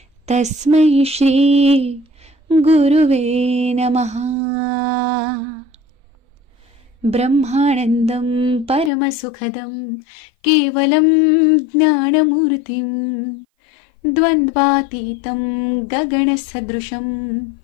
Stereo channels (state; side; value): drops out; right; at 8.9 s